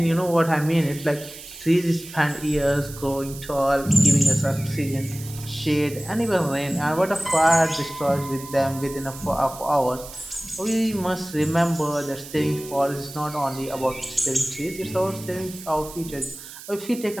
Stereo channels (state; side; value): noise; right; hiss, 15 dB below the sound